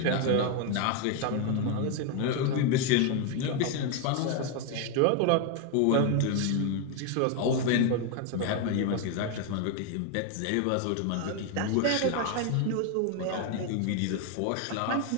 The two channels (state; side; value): different; both; correlation 0.01